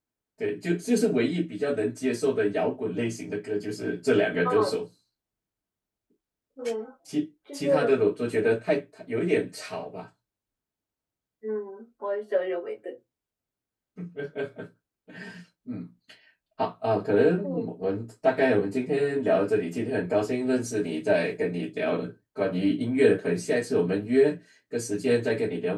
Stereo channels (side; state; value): both; identical; correlation 1.00